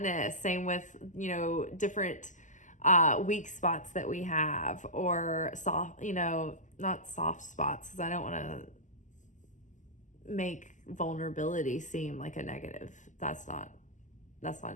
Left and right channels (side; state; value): right; late; 0.37 ms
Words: same with, different weak spots that we have, or soft, not soft spots, because I don't want to make vulnerability seem like a negative. That's not it